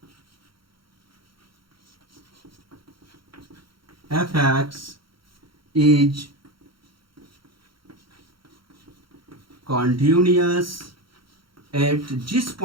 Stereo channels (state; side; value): late; left; 0.74 ms